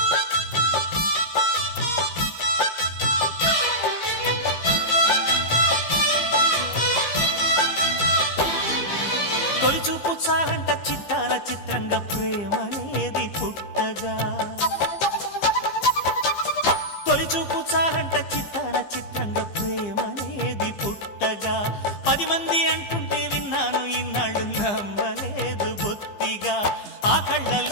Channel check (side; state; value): right; late; 15 ms